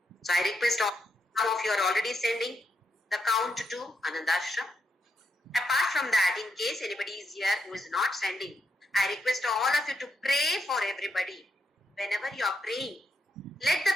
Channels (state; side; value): normal; both; correlation 0.80